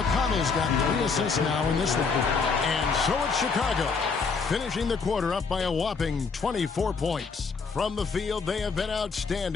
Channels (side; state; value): right; quieter; 5.0 dB